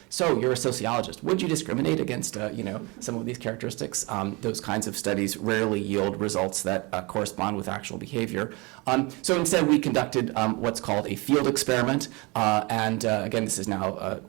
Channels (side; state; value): left; quieter; 26.7 dB